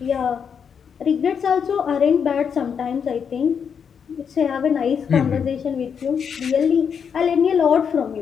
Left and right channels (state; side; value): quieter; right; 7.0 dB